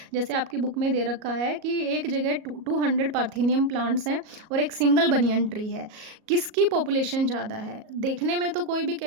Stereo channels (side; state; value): left; late; 37 ms